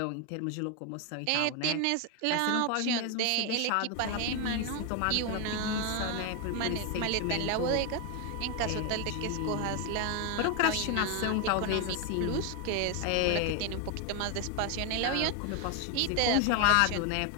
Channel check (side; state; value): both; different; correlation 0.01